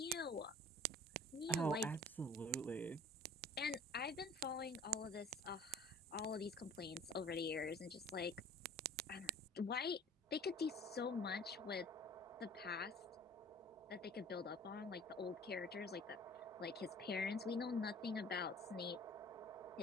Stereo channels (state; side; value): normal; both; correlation 0.47